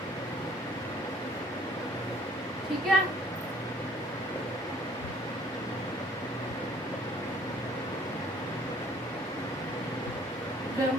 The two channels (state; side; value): normal; both; correlation 0.57